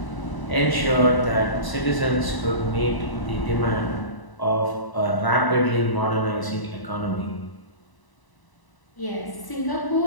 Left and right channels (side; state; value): right; late; 1.0 ms